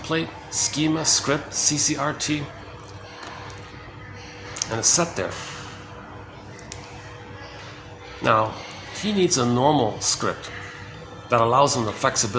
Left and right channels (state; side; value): identical; both; correlation 1.00